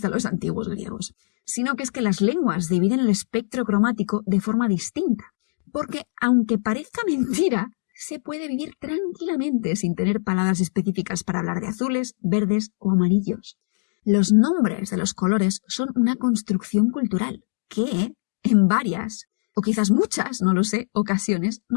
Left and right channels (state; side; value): silent; right; digital silence